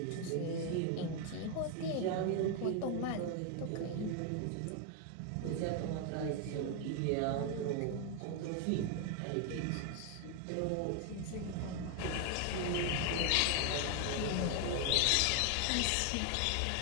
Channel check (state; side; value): different; both; correlation 0.01